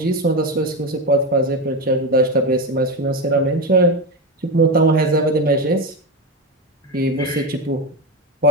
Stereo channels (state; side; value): normal; both; correlation 0.16